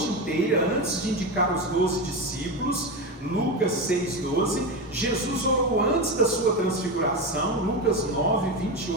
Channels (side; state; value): both; normal; correlation 0.17